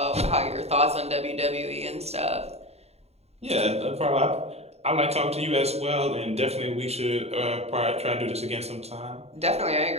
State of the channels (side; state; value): left; late; 0.30 ms